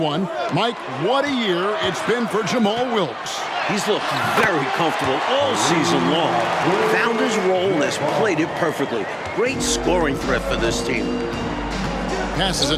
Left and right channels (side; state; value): both; identical; correlation 1.00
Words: Mike, what a year it's been for Jamal Wilkes. He's looked very comfortable all season long. Found his role and has played it perfectly. Great scoring threat for this team. Passes